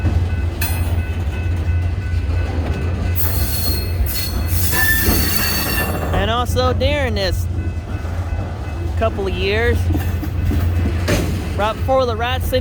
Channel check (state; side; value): identical; both; correlation 1.00